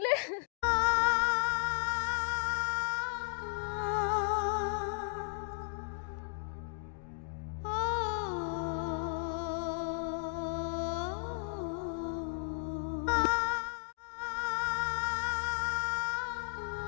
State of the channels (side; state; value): right; silent; digital silence